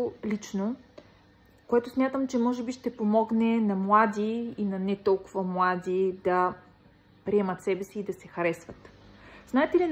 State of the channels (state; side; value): identical; both; correlation 1.00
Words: лично, което смятам, че може би ще помогне на млади и на не толкова млади да приемат себе си и да се харесват. Знаете ли